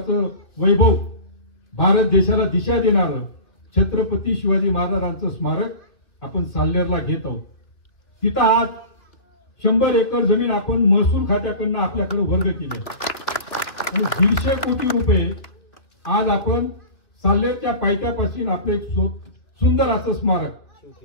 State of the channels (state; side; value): late; right; 2.8 ms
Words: वैभव, भारत देशाला दिशा देणारं छत्रपती शिवाजी महाराजांचं स्मारक आपण साल्हेरला घेत आहोत. तिथं आज 100 एकर जमीन आपण महसूल खात्याकडनं आपल्याकडे वर्ग केली आणि 150 कोटी रुपये आज आपण साल्हेरच्या पायथ्यापासून आपलं एक सुंदर असं स्मारक